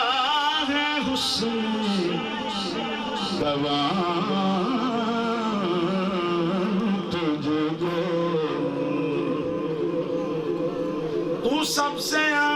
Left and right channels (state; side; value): identical; both; correlation 1.00